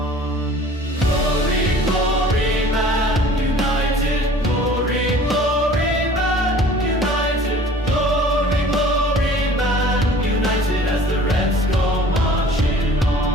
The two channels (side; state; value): both; normal; correlation 0.48